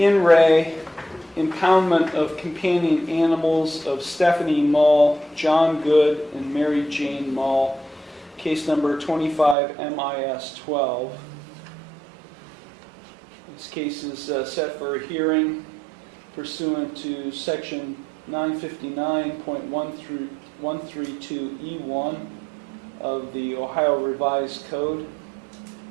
impoundment of companion animals of Stephanie Mall, John Good, and Mary Jane Mall, case number 25 MIS 12. This case is set for a hearing pursuant to section 959.132E1 of the Ohio Revised Code.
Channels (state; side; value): drops out; left; at 9.6 s